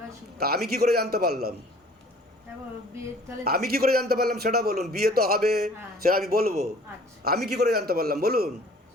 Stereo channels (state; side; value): normal; both; correlation 0.52